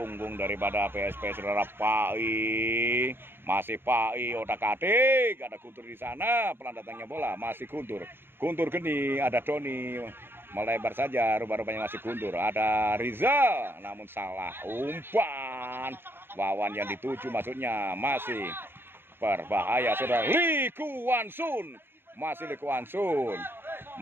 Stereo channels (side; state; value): left; late; 0.10 ms